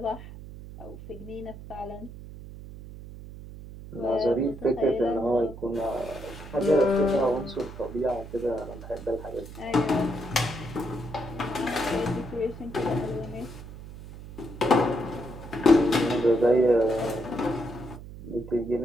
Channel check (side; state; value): right; noise; hum, 14 dB below the sound